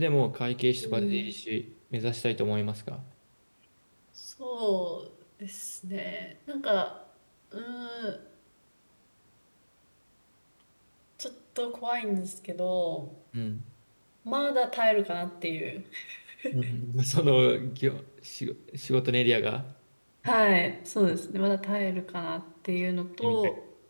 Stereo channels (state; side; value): inverted; both; correlation -1.00